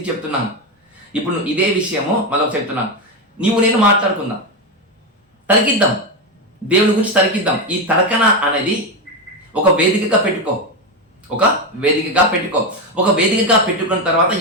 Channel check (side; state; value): both; normal; correlation 0.11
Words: చెప్తున్నాను. ఇప్పుడు ఇదే విషయము మళ్ళీ చెప్తున్నాను. నేను మాట్లాడుకుందాం, తరికిద్దాం, దేవుని గురించి తరికిద్దాం. ఈ తరకన అనేది ఒక వేదికగా పెట్టుకో. ఒక వేదికగా పెట్టుకున్న తర్వాత